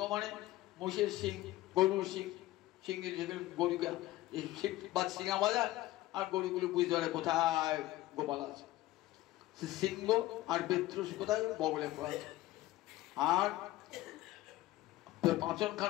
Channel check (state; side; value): quieter; right; 16.6 dB